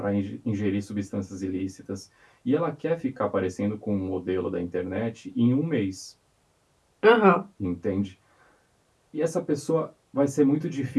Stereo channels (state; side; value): identical; both; correlation 1.00